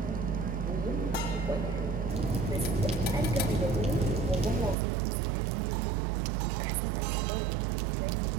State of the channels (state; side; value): drops out; left; at 4.8 s